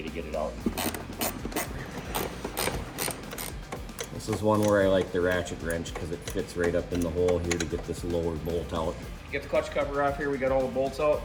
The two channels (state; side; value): identical; both; correlation 1.00